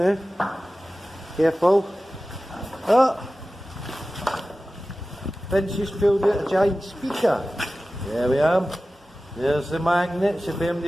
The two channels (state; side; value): normal; both; correlation 0.96